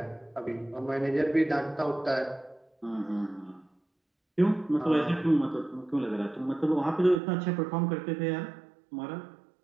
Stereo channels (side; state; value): left; drops out; at 7.2 s